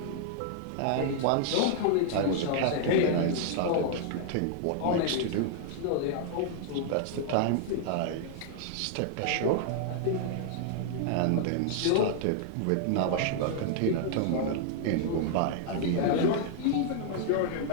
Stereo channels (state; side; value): different; both; correlation -0.01